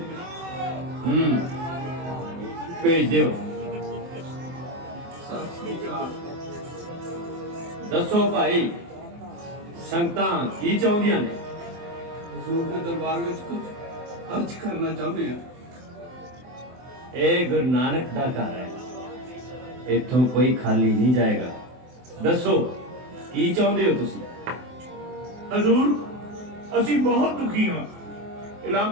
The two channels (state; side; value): late; left; 24 ms